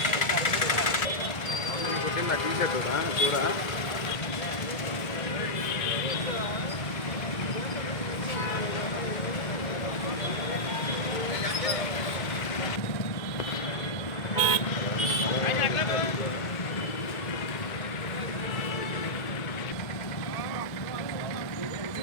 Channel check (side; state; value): right; late; 1.8 ms